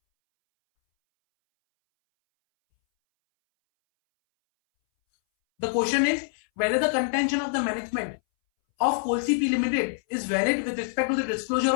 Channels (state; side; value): silent; right; 61 dB below the other